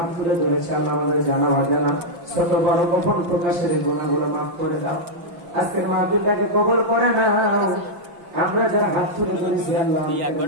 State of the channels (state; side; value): late; left; 5.8 ms